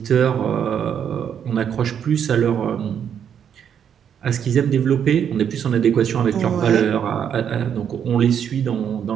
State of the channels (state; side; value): quieter; left; 8.4 dB